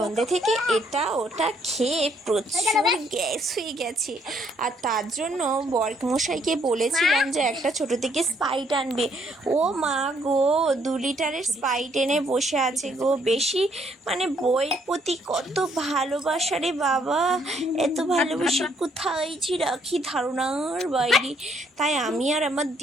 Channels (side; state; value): both; normal; correlation 0.69